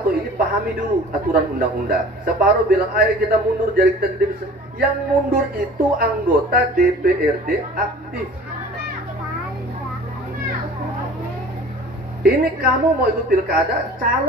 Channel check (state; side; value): normal; both; correlation 0.44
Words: ini pahami dulu aturan undang-undang. Separuh bilang ayo kita mundur jadi kita bisa. Yang mundur itu anggota DPRD aktif. Ini kamu mau ikut pilkada,